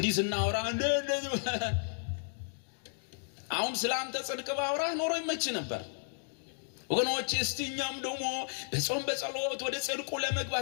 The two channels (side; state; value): right; silent; digital silence